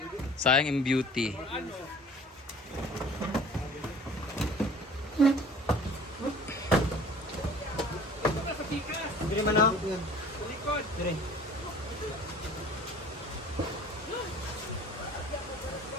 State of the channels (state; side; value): normal; both; correlation 0.47